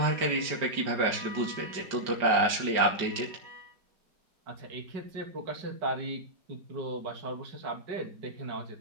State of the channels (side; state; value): left; late; 5.1 ms